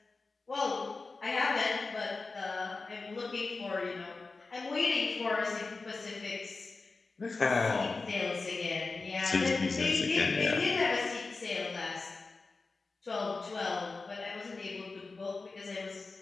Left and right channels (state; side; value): quieter; right; 3.9 dB